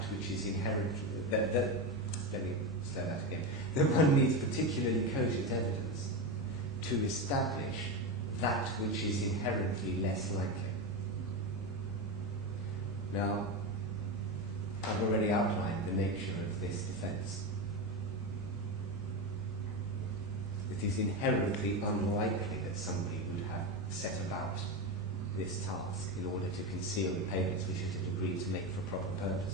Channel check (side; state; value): both; normal; correlation 0.16